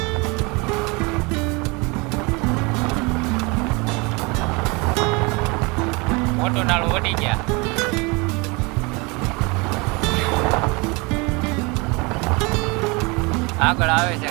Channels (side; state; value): left; quieter; 27.8 dB